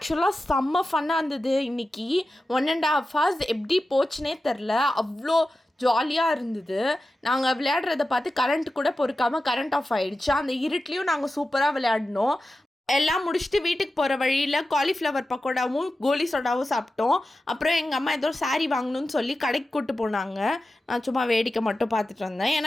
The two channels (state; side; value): normal; both; correlation 0.93